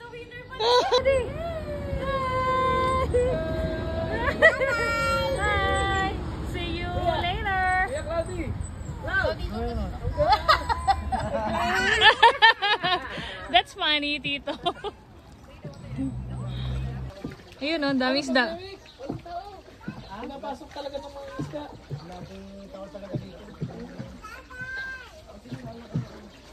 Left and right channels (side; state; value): both; identical; correlation 1.00